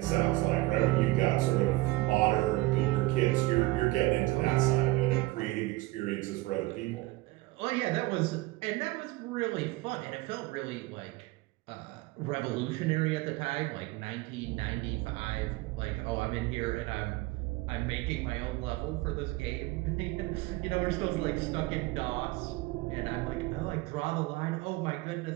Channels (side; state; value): left; quieter; 20.0 dB